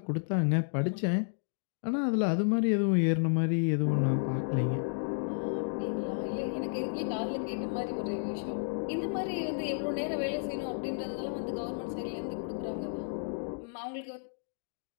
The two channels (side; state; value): right; silent; digital silence